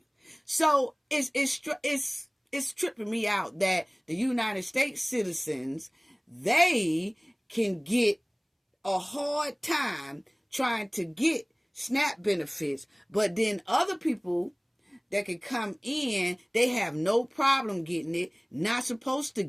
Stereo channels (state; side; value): identical; both; correlation 1.00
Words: So it's tripping me out that the United States citizens, they can get a hard time trying to get SNAP benefits, but then other people that can come in, they have no problem getting it, not supposed to